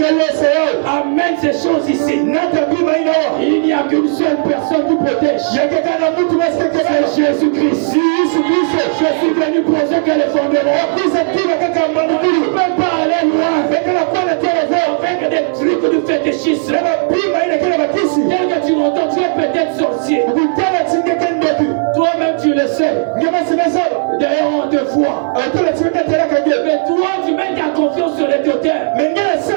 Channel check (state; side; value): silent; left; 71 dB below the other